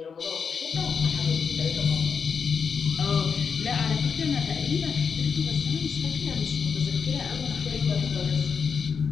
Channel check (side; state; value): right; quieter; 6.1 dB